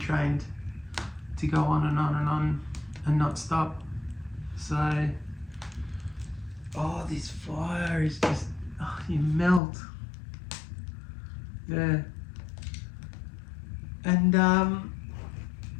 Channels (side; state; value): right; drops out; at 9.6 s